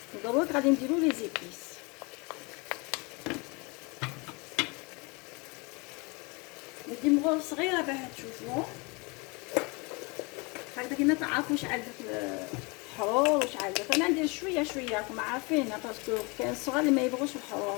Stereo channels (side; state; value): right; quieter; 29.0 dB